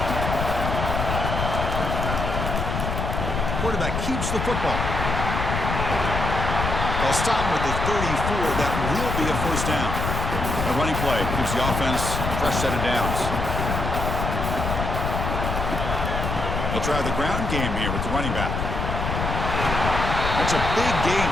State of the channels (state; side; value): noise; left; rumble, 2 dB below the sound